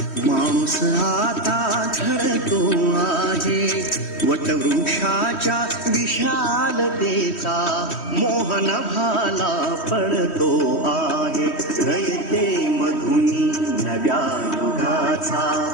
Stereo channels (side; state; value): right; late; 3.1 ms